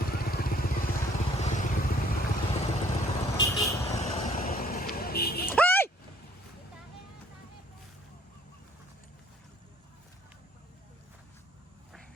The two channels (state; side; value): normal; both; correlation 0.60